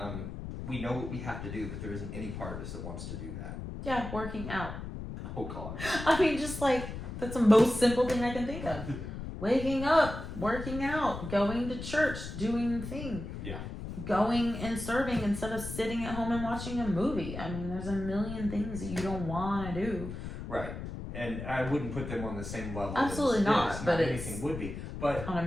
we know what we have to do, but there isn't any part of us that wants to do that. Yeah, working out. Oh God. I mean, just like that's the most simple thing I can think of. Waking up, working out, going to church, doing things. Yeah. Going and serving instead of sitting at home and watching a movie. I mean, there's a million things that you don't want to do. Right. And I wouldn't put them on the same level. Absolutely not. But anything would be. But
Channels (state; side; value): noise; left; rumble, 8 dB below the sound